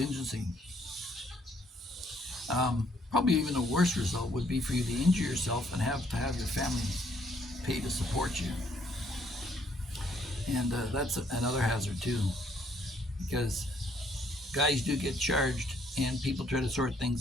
Probably even a worse result would be for you to injure yourself and have to have your family pay to support you. And that's another hazard too, because guys do get charged and people try to sort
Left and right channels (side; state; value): both; normal; correlation 0.67